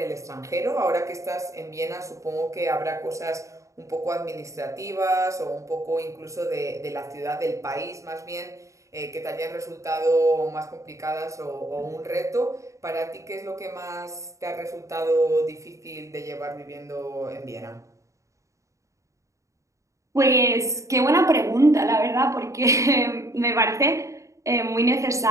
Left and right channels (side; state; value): left; late; 0.15 ms